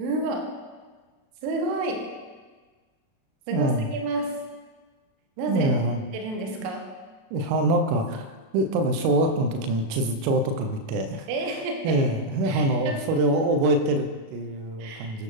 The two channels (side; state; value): left; late; 36 ms